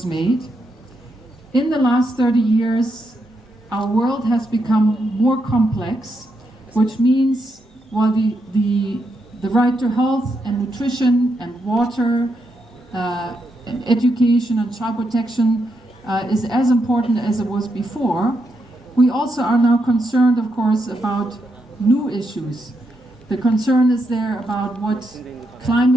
made. In the last 30 years, our world has become more complex, which means while the right to health and nutrition and water and education and child protection is as important as it was before, we also are now concerned, of course, about new issues. The concern is there about what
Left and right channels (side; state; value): both; normal; correlation 0.82